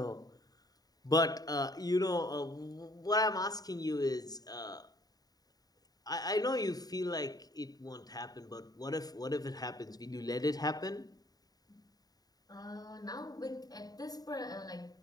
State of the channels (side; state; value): right; late; 0.18 ms